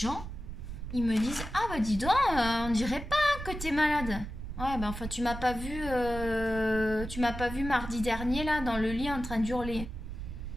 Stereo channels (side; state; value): right; noise; rumble, 8 dB below the sound